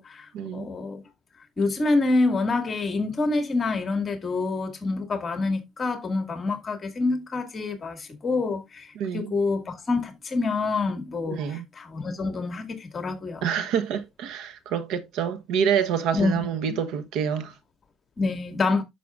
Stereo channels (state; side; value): normal; both; correlation 0.74